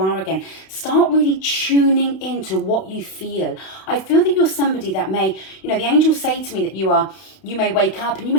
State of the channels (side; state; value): right; late; 32 ms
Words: again. Start really tuning into what you feel. I feel that you're somebody that may, the angels say to me that you may wake up and you